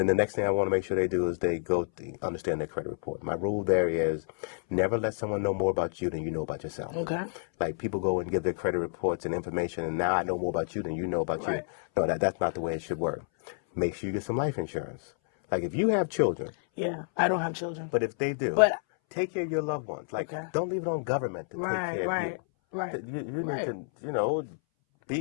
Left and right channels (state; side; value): silent; right; 58 dB below the other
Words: the next thing I want to make sure they do is they understand their credit report. My rule there is never let someone know more about you than you know about yourself. Okay. Like people go and give their credit reports and information, and now I know more about you than you know about Right. you. No, that's not the way it should work. Make sure you get some life insurance. Like if you have children, Yeah, I don't have children. but if they do, But- take care of your loved ones. Like Okay. don't leave it on government to take care of you. Right. You need Right. to,